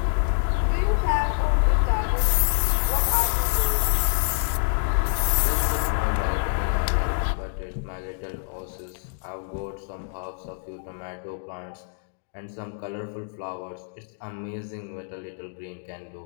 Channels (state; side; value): silent; right; digital silence